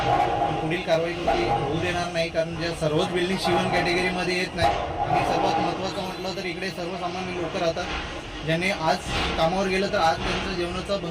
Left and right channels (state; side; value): identical; both; correlation 1.00